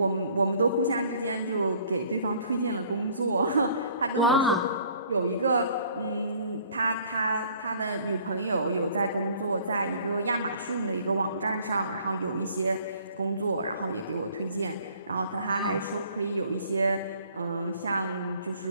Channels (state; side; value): inverted; both; correlation -0.56